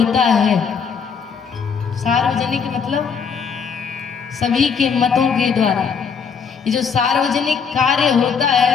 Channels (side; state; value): right; quieter; 6.2 dB